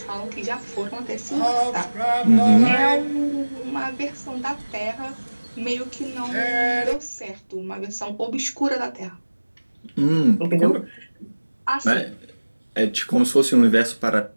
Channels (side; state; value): both; inverted; correlation -1.00